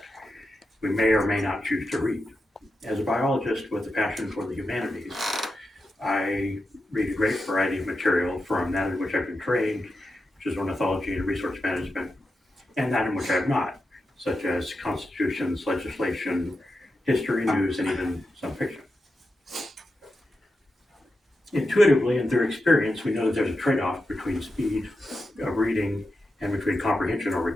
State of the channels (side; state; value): both; normal; correlation 0.89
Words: we may or may not choose to read. As a biologist with a passion for the humanities, I read a great variety of material from that in which I've been trained, which is ornithology and resource management, and that in which I have not, such as constitutions, legislation, history, news, and even some fiction. Intuitively and through experience, we know that there's a trade off between speed of reading and between comprehension or